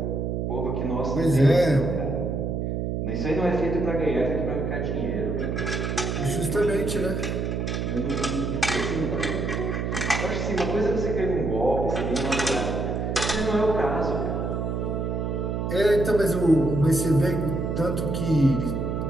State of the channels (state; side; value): noise; right; hum, 1 dB below the sound